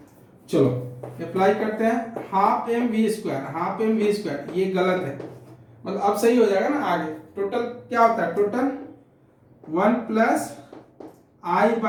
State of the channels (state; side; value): identical; both; correlation 1.00